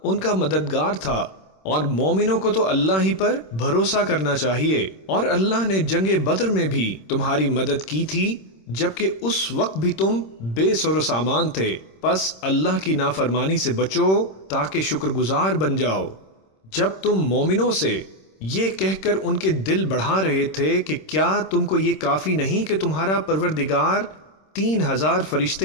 ان کا مددگار تھا، اور مومنوں کو تو اللہ ہی پر بھروسہ کرنا چاہیے۔ اور اللہ نے جنگ بدر میں بھی تمہاری مدد کی تھی جبکہ اس وقت بھی تم بے سر و سامان تھے، پس اللہ کی نافرمانی سے بچو تاکہ شکر گزار بن جاؤ۔ جب تم مومنوں سے یہ کہہ کر ان کے دل بڑھا رہے تھے کہ کیا تم کو یہ کافی نہیں کہ تمہارا پروردگار 3000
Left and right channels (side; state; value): right; late; 26 ms